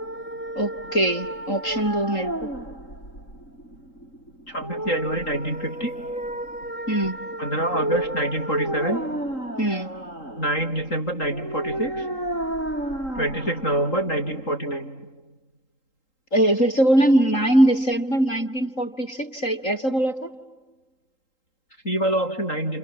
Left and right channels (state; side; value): late; right; 3.8 ms